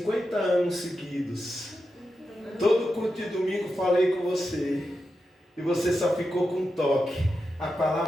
anos seguidos. Todo culto de domingo falei com você, e você só ficou com um toque. A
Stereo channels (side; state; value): both; normal; correlation 0.89